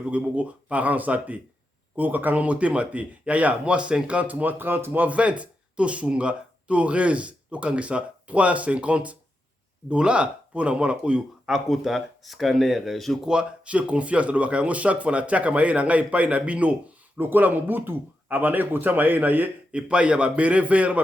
ko boko parents zate ko yoka kanga motema te ya moi 50 moi 30 moi 20 to sunga to raise to kangisa $350 pour na mwana oyo akota scanner. Je crois, j'ai confiance dans le chaque fois na tiaka maye na ngai pai na bino lokola mobutu abana ko tia maye na ye epai ya ba beret vert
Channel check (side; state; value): both; normal; correlation 0.87